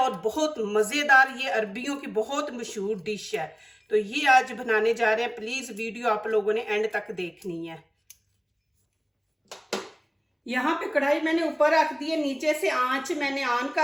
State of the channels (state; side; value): identical; both; correlation 1.00